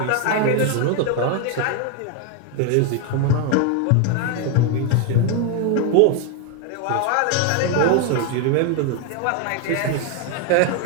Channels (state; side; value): different; both; correlation 0.01